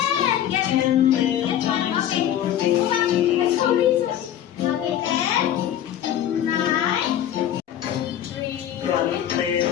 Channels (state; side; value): quieter; right; 11.0 dB